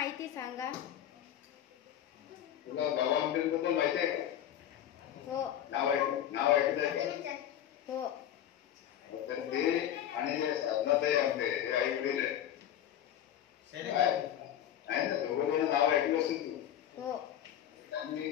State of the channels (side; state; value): right; quieter; 10.9 dB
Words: सांगा. तुला गावाबद्दल माहिती आहे का? हो. नाव ऐकत आहे का? हो. तर ते आणि साधनाताई आमटे हे आई वडील आहे ना, दोघं नाव ऐकलं असेल तू. हो. त्यांनी